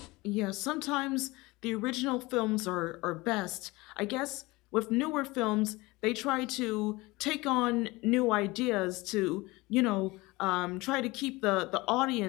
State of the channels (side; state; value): right; quieter; 22.1 dB